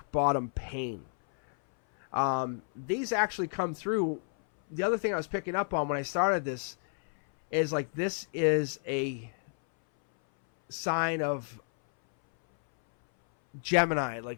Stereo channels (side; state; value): right; silent; 58 dB below the other